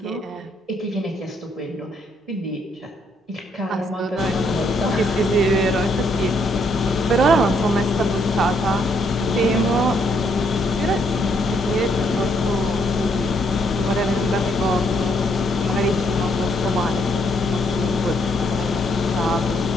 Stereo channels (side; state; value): both; normal; correlation 0.71